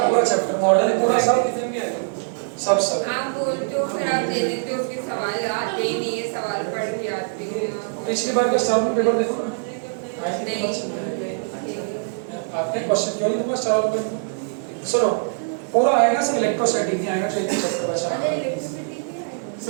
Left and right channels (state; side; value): silent; left; digital silence